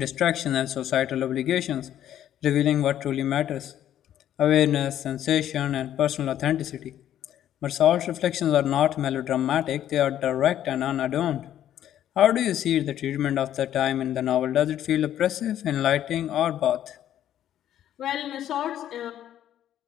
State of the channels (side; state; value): right; quieter; 11.3 dB